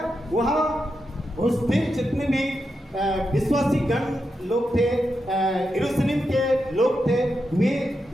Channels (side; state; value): both; normal; correlation 0.86